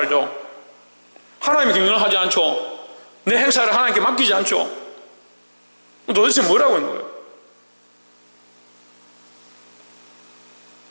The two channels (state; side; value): inverted; both; correlation -1.00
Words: 하나님의 경영을 하지 않죠. 내 행사를 하나님께 맡기지 않죠. 도대체 뭐라고 있는 거예요?